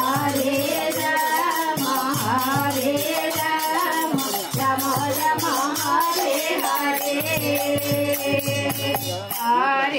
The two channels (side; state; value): both; identical; correlation 1.00